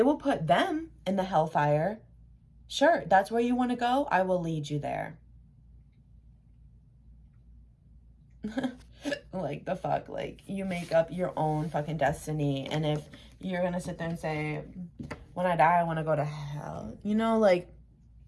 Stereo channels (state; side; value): identical; both; correlation 1.00